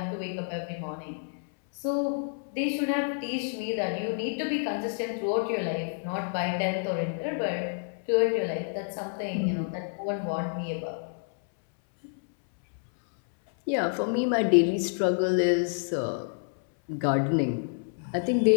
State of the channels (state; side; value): silent; right; 59 dB below the other